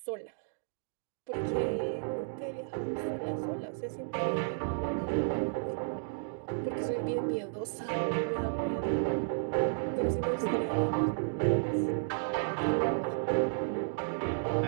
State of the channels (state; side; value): silent; left; digital silence